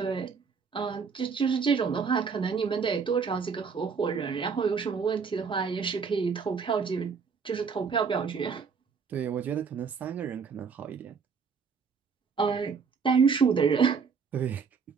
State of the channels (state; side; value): quieter; left; 5.7 dB